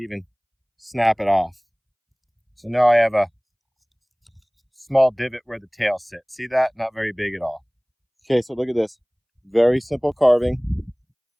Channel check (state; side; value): identical; both; correlation 1.00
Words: snap it off. So now I have a small divot where the tail sits. See that? Not very big at all. Okay, so look at this. Very simple carving,